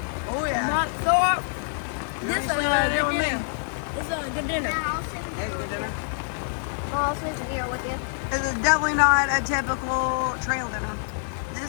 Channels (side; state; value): right; silent; 61 dB below the other